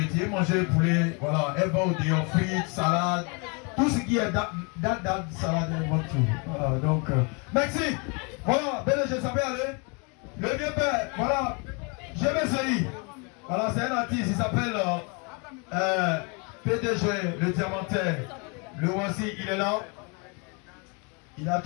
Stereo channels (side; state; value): right; quieter; 33.2 dB